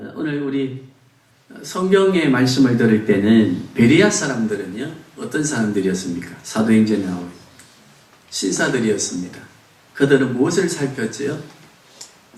오늘 우리 성경의 말씀을 들을 때는 베레아 사람들은요, 어떤 사람들이었습니까? 사도행전에 나오는 신사들이었습니다. 그들은 무엇을 살폈지요?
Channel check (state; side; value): identical; both; correlation 1.00